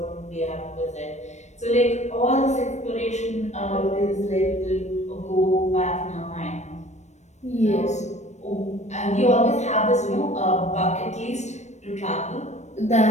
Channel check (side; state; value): right; late; 0.33 ms